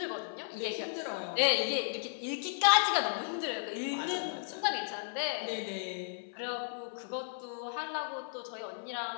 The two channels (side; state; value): right; silent; 55 dB below the other